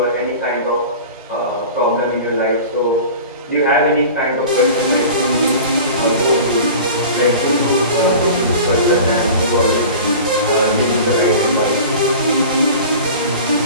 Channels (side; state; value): both; inverted; correlation -0.38